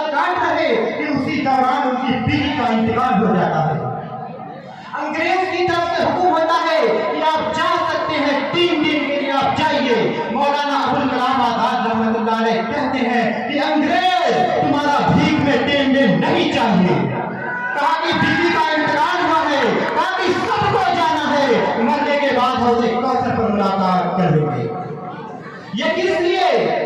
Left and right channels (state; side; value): identical; both; correlation 1.00